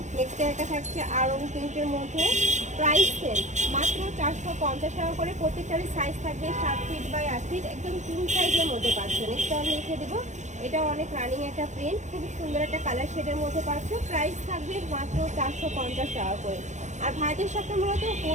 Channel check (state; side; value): late; left; 0.34 ms